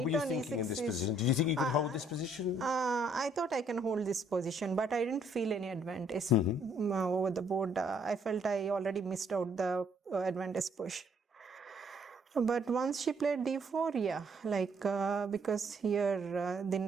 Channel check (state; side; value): normal; both; correlation 0.66